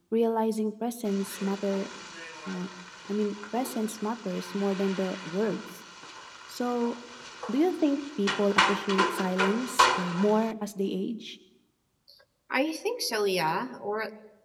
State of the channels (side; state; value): both; identical; correlation 1.00